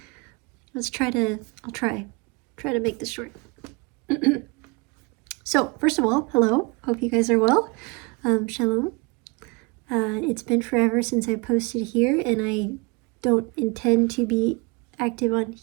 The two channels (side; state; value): left; quieter; 27.7 dB